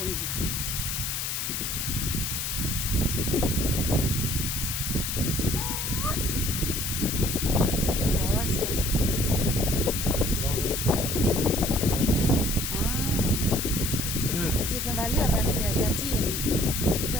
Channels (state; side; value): noise; left; hiss, 2 dB below the sound